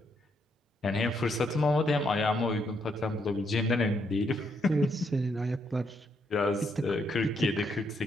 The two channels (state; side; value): normal; both; correlation 0.75